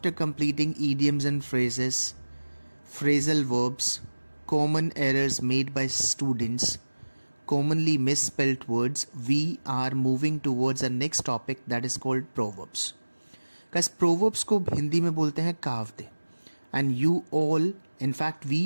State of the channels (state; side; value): inverted; both; correlation -1.00